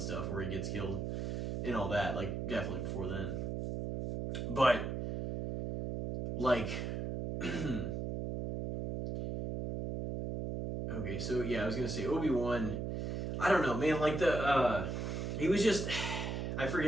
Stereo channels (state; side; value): noise; right; hum, 2 dB below the sound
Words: where he gets killed and all that, like definitely before then. But like okay, so yeah, I was gonna say Obi-Wan, I don't know, man, like he was just, I